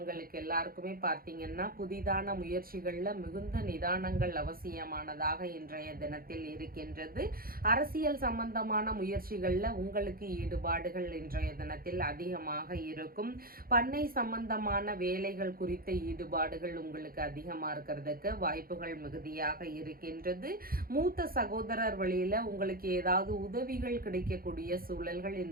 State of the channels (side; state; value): left; late; 0.43 ms